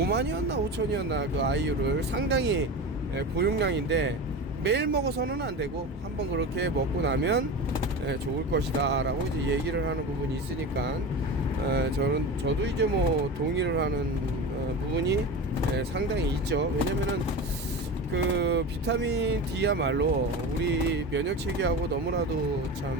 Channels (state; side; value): normal; both; correlation 0.28